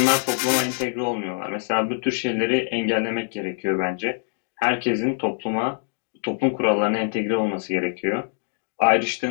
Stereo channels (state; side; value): silent; right; 56 dB below the other